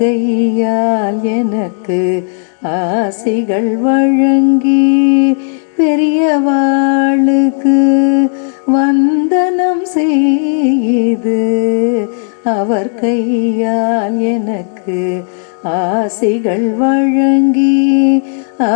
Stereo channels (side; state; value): right; silent; digital silence